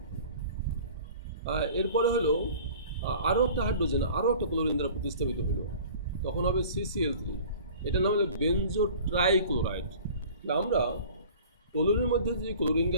এরপরে হলো আরও একটা হাইড্রোজেন আরও একটা ক্লোরিন দ্বারা প্রতিস্থাপিত হলো, তখন হবে CCl3, এটার নাম হলো বেনজো ট্রাইক্লোরাইড। আমরা টলুইনের মধ্যে যে ক্লোরিন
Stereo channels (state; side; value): inverted; both; correlation -0.45